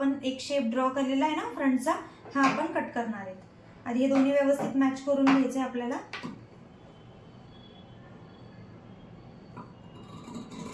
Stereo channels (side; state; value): both; identical; correlation 1.00